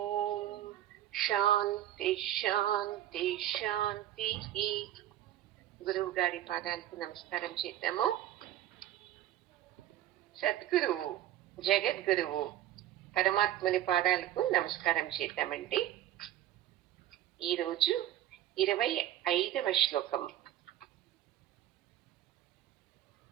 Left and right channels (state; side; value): quieter; left; 12.8 dB